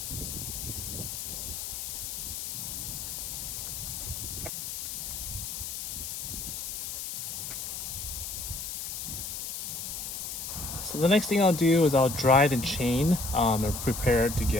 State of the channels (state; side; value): noise; left; hiss, 5 dB below the sound